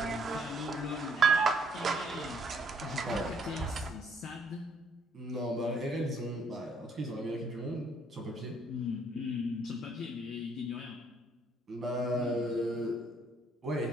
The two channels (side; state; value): both; normal; correlation 0.66